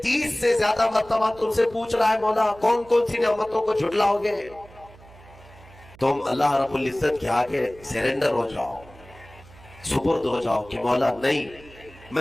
30 से ज्यादा मर्तबा तुमसे पूछ रहा है मौला कौन कौन सी नेमतों को झुटलाओगे? तुम अल्लाह रब्बुल इज्जत के आगे सरेंडर हो जाओ, सुपुर्द हो जाओ कि मौला नहीं,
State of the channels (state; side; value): noise; right; hum, 23 dB below the sound